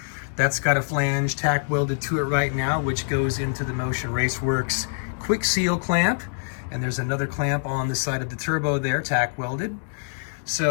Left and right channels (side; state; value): right; silent; digital silence